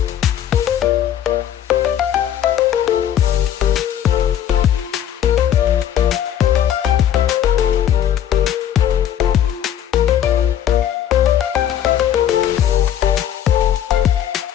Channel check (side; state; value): right; quieter; 10.3 dB